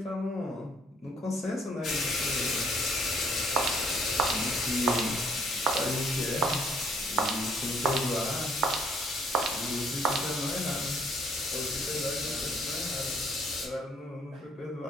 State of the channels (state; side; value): normal; both; correlation 0.65